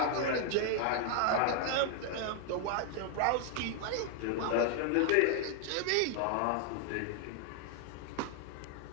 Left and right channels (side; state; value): both; different; correlation 0.00